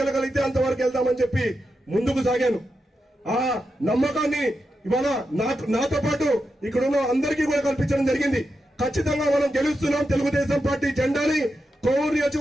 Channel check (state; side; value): normal; both; correlation 0.87